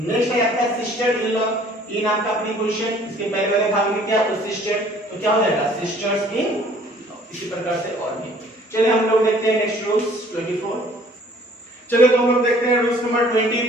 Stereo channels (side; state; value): both; normal; correlation 0.55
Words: है आपका सिस्टर इन लॉ। इन आपका प्रीपोजिशन, इसके पहले वाले भाग में क्या? तो सिस्टर, तो क्या हो जाएगा? सिस्टर्स इन। इसी प्रकार से और भी। चलिए हम लोग देखते हैं नेक्स्ट रूल्स 24। चलिए तो हम लोग देखते हैं रूल्स नंबर